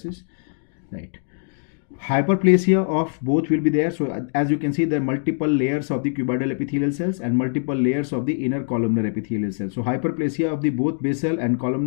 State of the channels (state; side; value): silent; right; digital silence